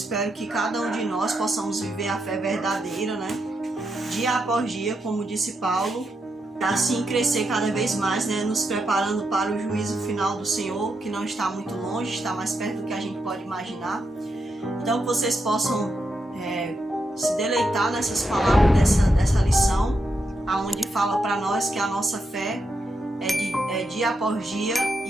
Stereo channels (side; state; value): both; normal; correlation 0.83